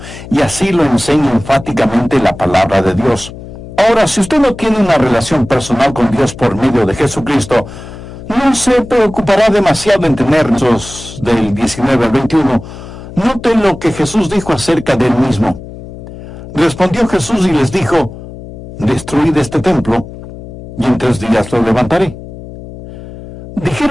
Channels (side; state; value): left; noise; hum, 14 dB below the sound